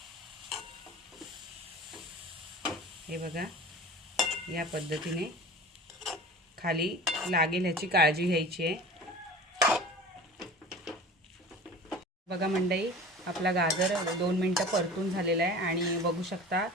हे बघा, या पद्धतीने खाली लागेल ह्याची काळजी घ्यायची आहे. बघा मंडळी, आपला गाजर 2 मिनटं परतून झालेला आहे आणि बघू शकता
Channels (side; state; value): both; normal; correlation 0.38